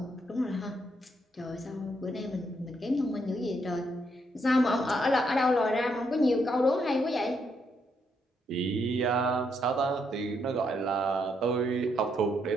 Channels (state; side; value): normal; both; correlation 0.76